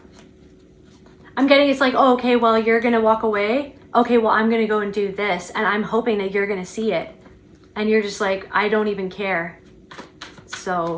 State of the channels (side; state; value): both; identical; correlation 1.00